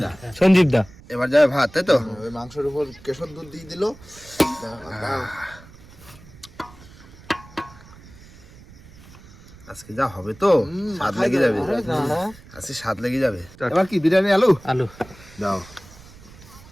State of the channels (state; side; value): noise; right; rumble, 21 dB below the sound